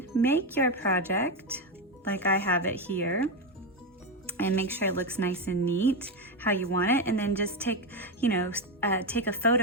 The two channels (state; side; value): normal; both; correlation 0.10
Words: make your project like I have it here and make sure it looks nice and neat how you want it, and then just take a